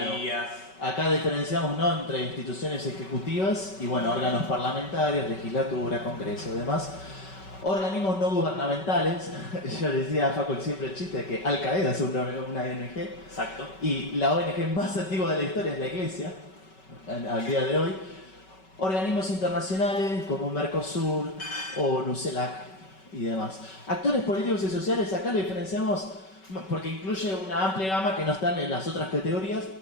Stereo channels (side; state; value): right; late; 5.3 ms